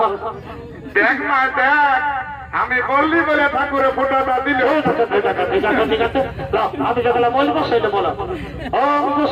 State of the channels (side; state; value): both; identical; correlation 1.00